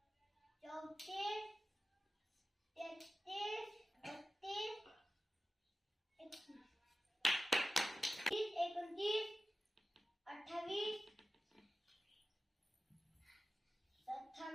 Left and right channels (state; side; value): normal; both; correlation 0.94